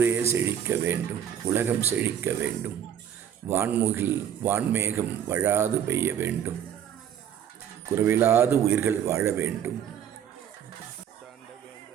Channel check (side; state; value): left; quieter; 9.3 dB